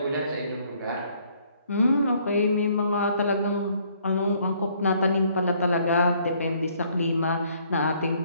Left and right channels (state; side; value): inverted; both; correlation -0.65